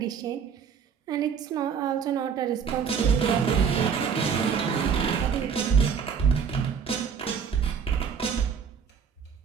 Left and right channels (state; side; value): quieter; left; 6.8 dB